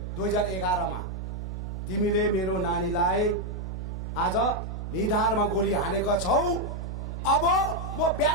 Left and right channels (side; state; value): right; noise; hum, 6 dB below the sound